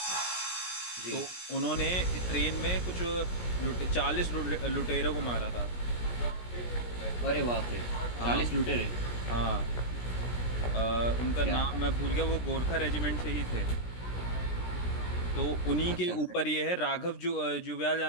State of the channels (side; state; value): right; late; 17 ms